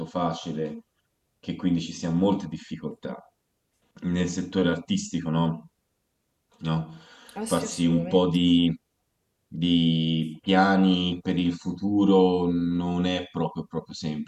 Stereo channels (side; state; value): both; identical; correlation 1.00